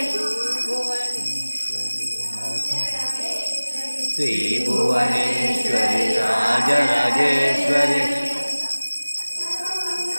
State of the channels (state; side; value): inverted; both; correlation -1.00